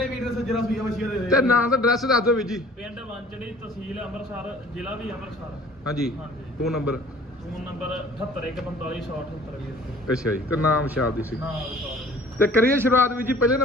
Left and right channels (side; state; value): both; normal; correlation 0.50